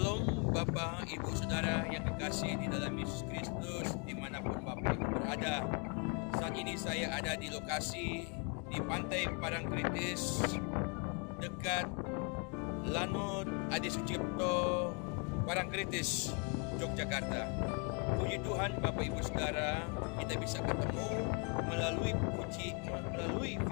Bapak, Ibu, Saudara yang kekasih di dalam Yesus Kristus dimanapun Bapak Ibu berada. Saat ini saya ada di lokasi di Pantai Parangtritis dekat Lanut Adi Sucipto, Parangtritis, Yogyakarta. Puji Tuhan Bapak Ibu Saudara, kita bisa ketemu melalui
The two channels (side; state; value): right; quieter; 35.2 dB